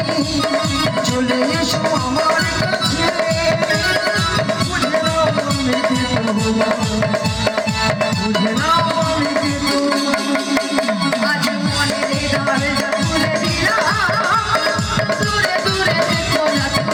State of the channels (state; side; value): identical; both; correlation 1.00